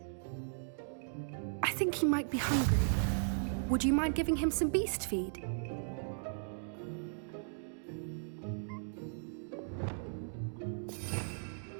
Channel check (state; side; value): silent; left; digital silence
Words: I think he might be hungry. Would you mind giving him some beast feed?